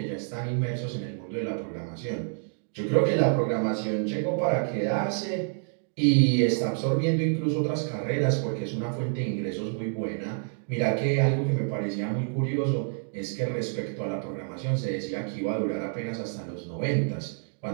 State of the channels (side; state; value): left; silent; 59 dB below the other